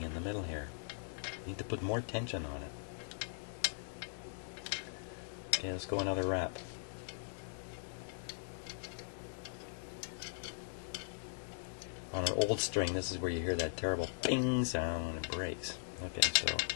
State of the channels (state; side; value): silent; right; digital silence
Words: in the middle here. You need to put more tension on it. Okay, let's go another wrap. On an old string, this is where you hear that terrible ping sound when it breaks. Okay, so